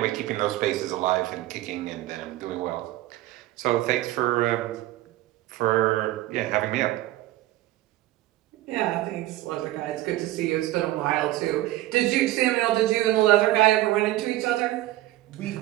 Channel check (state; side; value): quieter; left; 16.0 dB